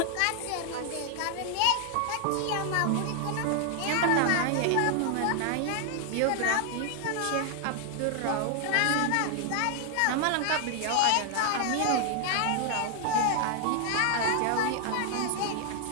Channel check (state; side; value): different; both; correlation 0.00